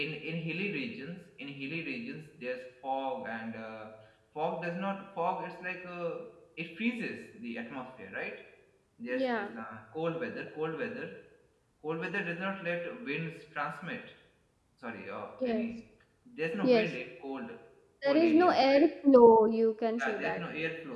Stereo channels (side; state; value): both; identical; correlation 1.00